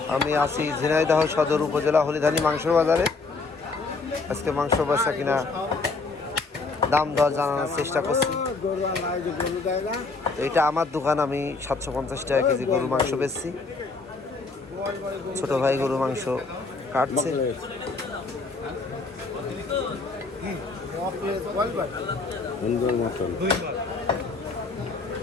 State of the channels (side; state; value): right; quieter; 4.0 dB